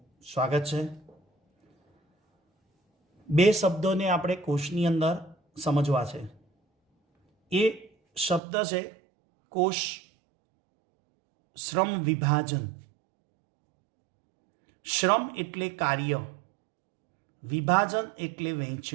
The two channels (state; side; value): drops out; left; at 8.4 s